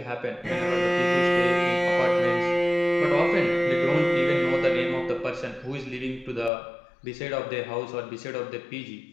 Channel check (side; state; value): right; drops out; at 6.5 s